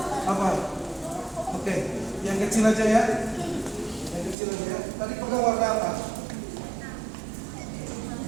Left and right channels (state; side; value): drops out; left; at 4.4 s